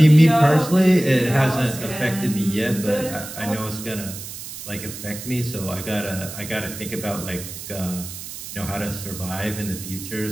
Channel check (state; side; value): noise; right; hiss, 11 dB below the sound